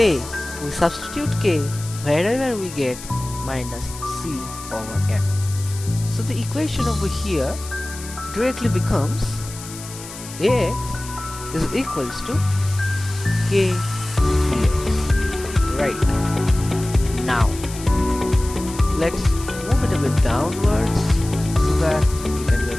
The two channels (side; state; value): left; noise; hiss, 14 dB below the sound